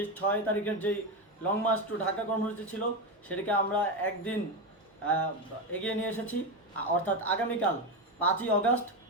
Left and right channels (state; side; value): normal; both; correlation 0.13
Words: 6 তারিখের যেই লং মার্চ টু ঢাকা কর্মসূচি ছিল সেটাকে আমরা একদিন এগিয়ে নিয়ে এসেছি, অর্থাৎ আগামীকাল 5ই আগস্ট